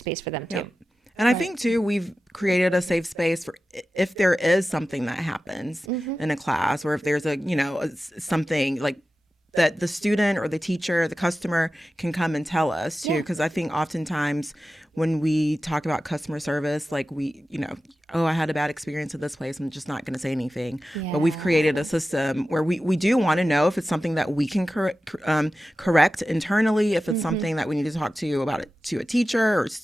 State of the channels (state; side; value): normal; both; correlation 0.94